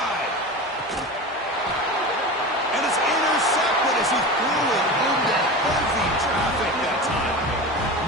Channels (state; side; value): normal; both; correlation 0.28